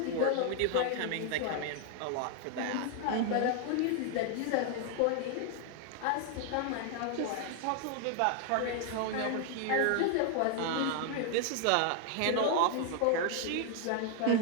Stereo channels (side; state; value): both; different; correlation 0.00